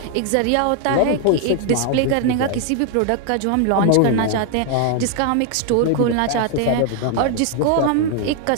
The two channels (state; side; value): different; both; correlation 0.00